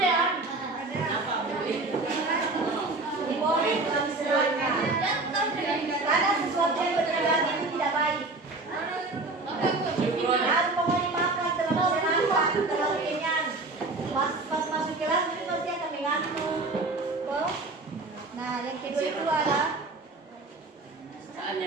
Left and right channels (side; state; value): left; quieter; 3.3 dB